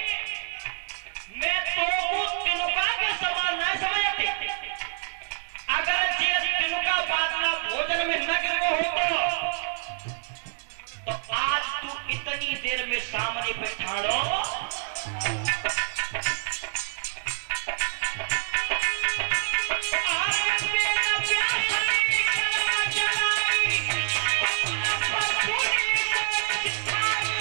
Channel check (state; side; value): silent; left; digital silence